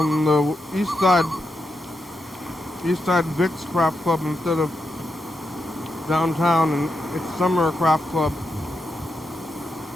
the east side Vic's Craft Club instead of downtown, and it's Summer Craft Club.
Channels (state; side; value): normal; both; correlation 0.85